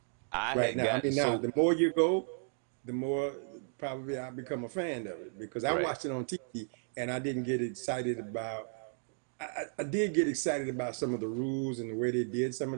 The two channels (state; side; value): silent; left; digital silence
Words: I right had now. I gotten mean, now so the more you go, the more probably I become a fan of it because I right. watched it on TV and I didn't get excited about. I did get excited about some of the rules and the way they did some